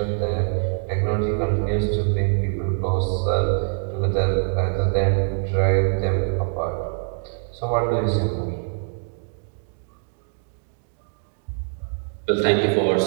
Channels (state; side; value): silent; left; 63 dB below the other